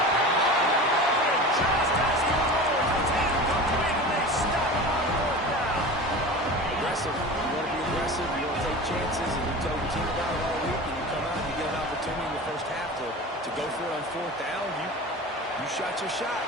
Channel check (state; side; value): normal; both; correlation 0.33